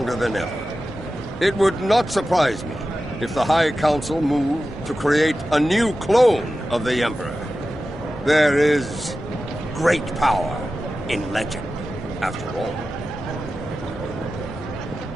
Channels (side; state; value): both; normal; correlation 0.93